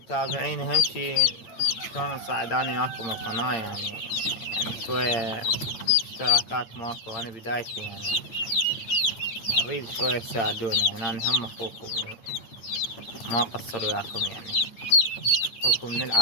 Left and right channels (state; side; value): late; right; 8.8 ms